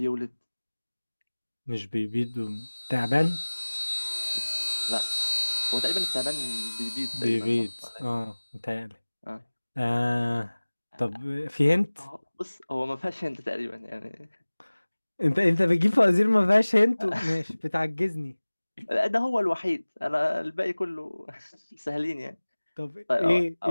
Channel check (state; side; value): inverted; both; correlation -1.00